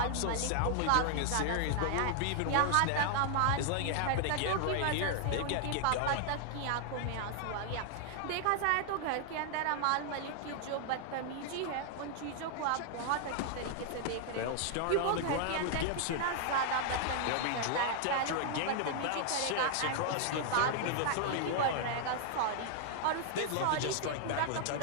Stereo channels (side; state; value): both; different; correlation 0.00